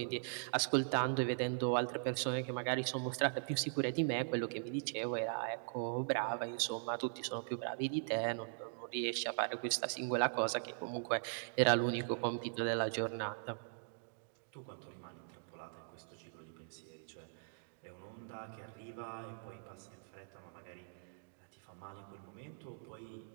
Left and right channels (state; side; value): silent; left; digital silence